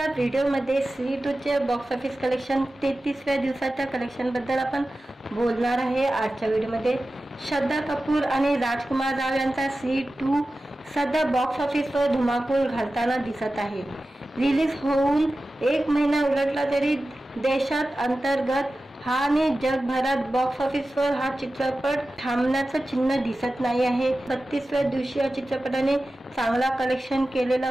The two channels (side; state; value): both; normal; correlation 0.94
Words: व्हिडिओमध्ये श्री 2 चे बॉक्स ऑफिस कलेक्शन 33व्या दिवसाच्या कलेक्शन बद्दल आपण बोलणार आहे। आजच्या व्हिडिओमध्ये श्रद्धा कपूर आणि राजकुमार राव यांचा श्री 2 सध्या बॉक्स ऑफिसवर धुमाकूळ घालताना दिसत आहे। रिलीज होऊन 1 महिना उलटला तरी देशात अंतर्गत आणि जगभरात बॉक्स ऑफिसवर हा चित्रपट थांबण्याचं चिन्ह दिसत नाही आहे। 32व्या दिवशी या चित्रपटाने चांगला कलेक्शन केलेला